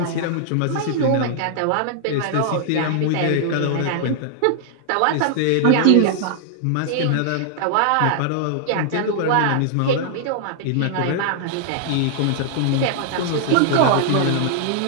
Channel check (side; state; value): both; different; correlation -0.01